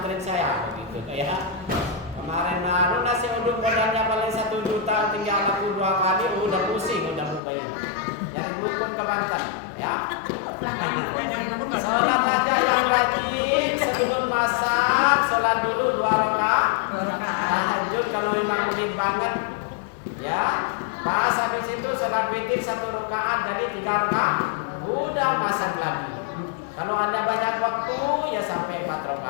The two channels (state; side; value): drops out; right; at 7.4 s